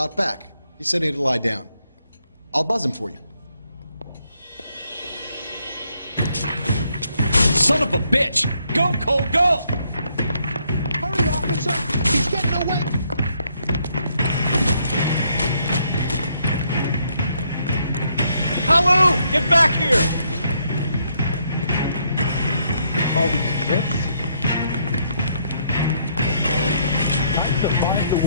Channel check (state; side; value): inverted; both; correlation -0.73